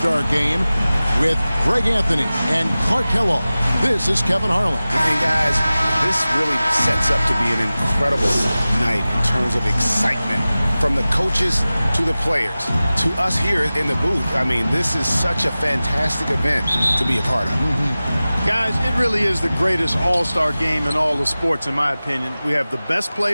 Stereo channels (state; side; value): inverted; both; correlation -0.97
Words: Game with Greg Anthony and Clark Kellogg. This is Kevin Harlan. And guys, this really sets up to be an incredible night in terms of excitement. From the coaches to the players, to us here in the booth. I mean, this is such a fantastic event to be a part of. Guys, it really is the greatest all-star game in all the sports, in my opinion. We have the best